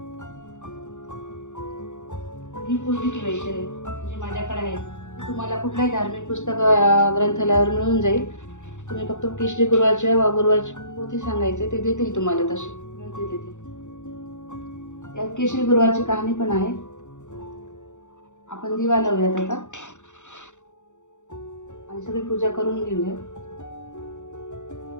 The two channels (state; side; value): late; right; 0.85 ms